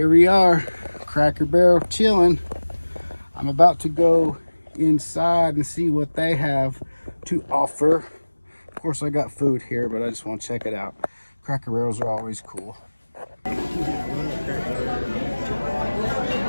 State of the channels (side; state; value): both; inverted; correlation -1.00